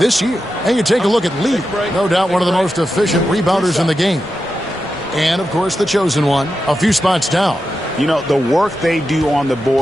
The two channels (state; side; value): normal; both; correlation 0.89